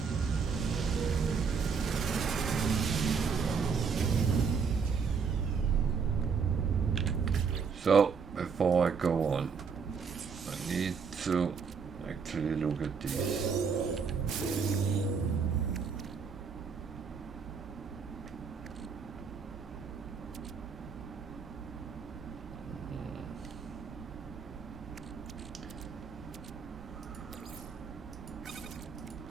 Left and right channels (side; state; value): left; quieter; 5.8 dB